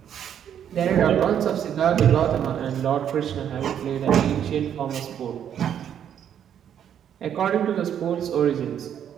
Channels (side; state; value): left; quieter; 9.3 dB